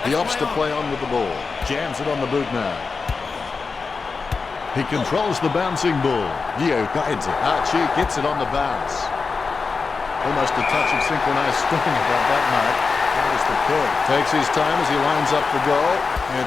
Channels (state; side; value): quieter; right; 4.6 dB